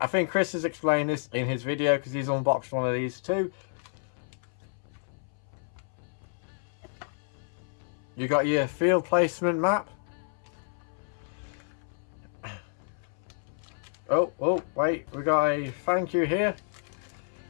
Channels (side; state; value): right; silent; 58 dB below the other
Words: think Chris has explained this in his video, because he's unboxed one of these too. You got your field placement map. Oh, wait, we got a thank you here.